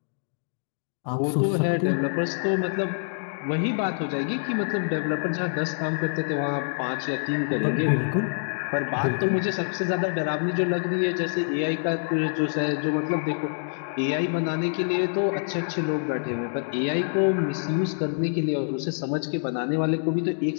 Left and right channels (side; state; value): right; silent; digital silence